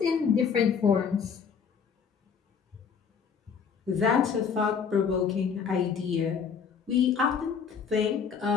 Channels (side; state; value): right; quieter; 6.5 dB